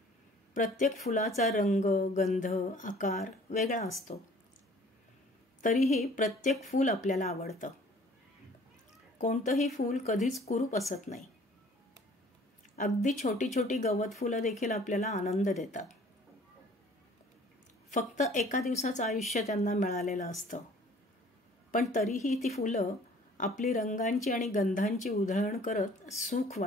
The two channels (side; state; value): both; normal; correlation 0.53